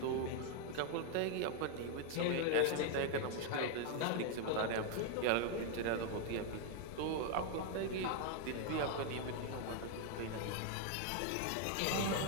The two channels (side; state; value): both; different; correlation 0.00